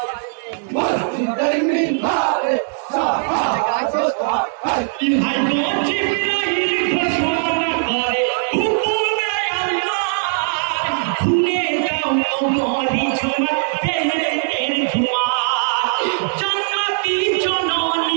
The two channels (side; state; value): left; silent; 57 dB below the other